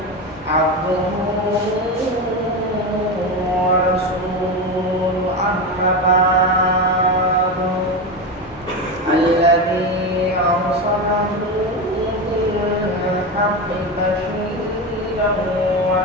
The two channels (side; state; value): both; normal; correlation 0.18